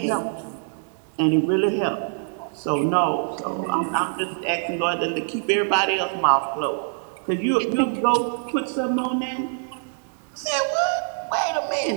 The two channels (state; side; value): silent; left; 55 dB below the other